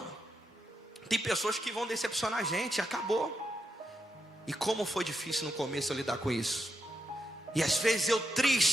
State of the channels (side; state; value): both; normal; correlation 0.84